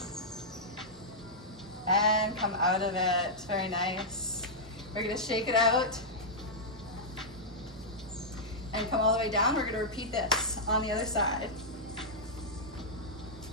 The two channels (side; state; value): both; normal; correlation -0.09